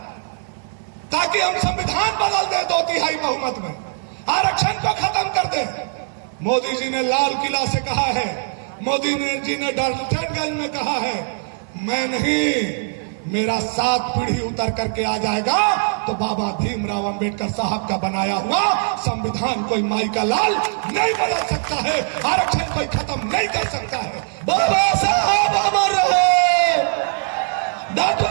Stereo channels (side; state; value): left; silent; digital silence